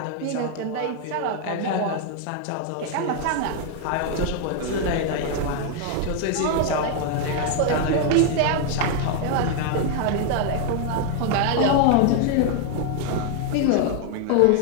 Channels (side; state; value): both; different; correlation 0.00